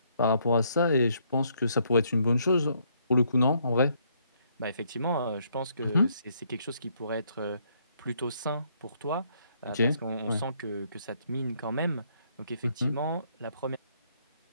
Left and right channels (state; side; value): inverted; both; correlation -0.71